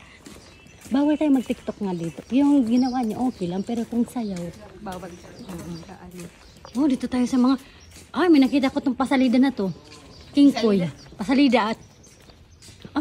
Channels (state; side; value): identical; both; correlation 1.00